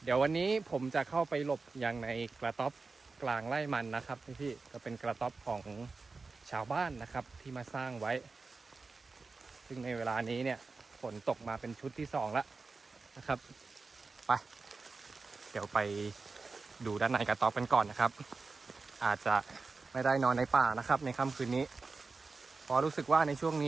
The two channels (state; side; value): quieter; left; 4.1 dB